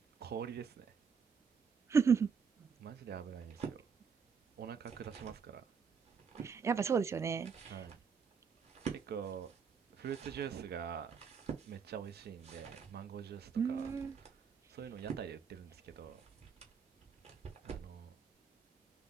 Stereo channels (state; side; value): quieter; left; 6.2 dB